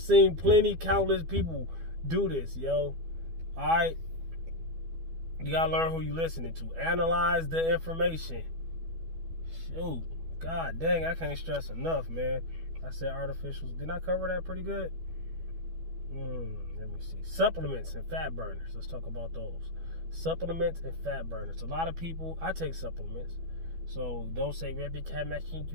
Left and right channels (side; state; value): left; late; 12 ms